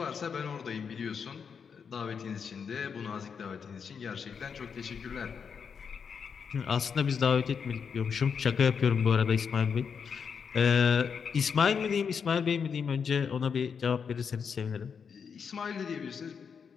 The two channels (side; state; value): right; quieter; 6.4 dB